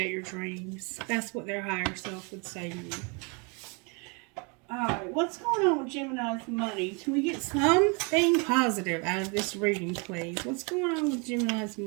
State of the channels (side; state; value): left; quieter; 32.8 dB